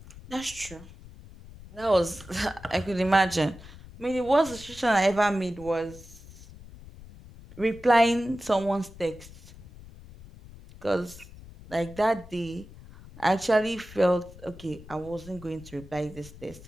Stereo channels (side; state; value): left; noise; rumble, 18 dB below the sound